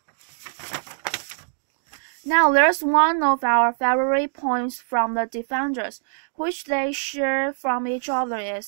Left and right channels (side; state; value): left; silent; digital silence